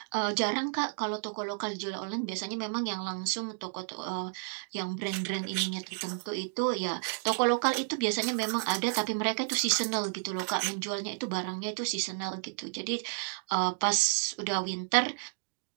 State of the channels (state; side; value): silent; left; digital silence